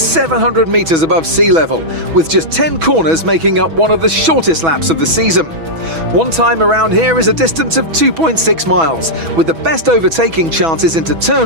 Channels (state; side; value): late; left; 6.1 ms